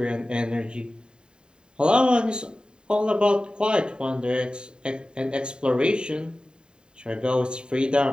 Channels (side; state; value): left; late; 0.049 ms